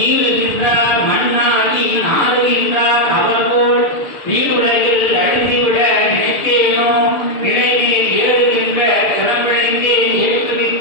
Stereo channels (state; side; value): late; right; 6.7 ms